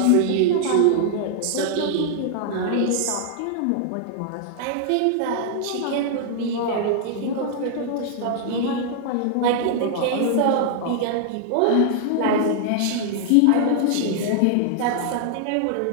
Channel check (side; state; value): both; different; correlation -0.01